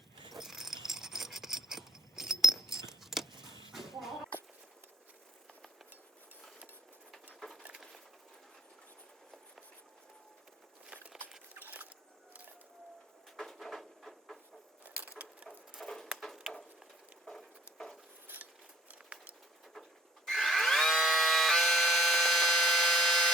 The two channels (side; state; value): both; normal; correlation 0.58